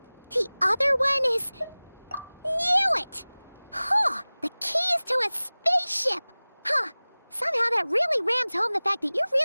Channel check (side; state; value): both; inverted; correlation -1.00